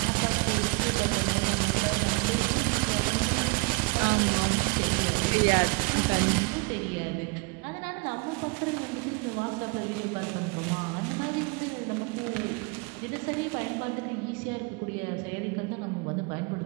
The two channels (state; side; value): quieter; left; 25.6 dB